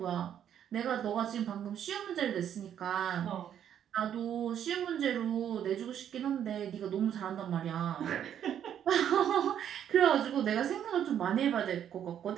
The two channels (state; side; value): quieter; left; 9.7 dB